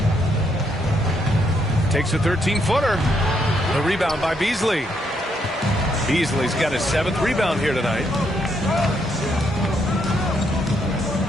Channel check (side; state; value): both; normal; correlation 0.75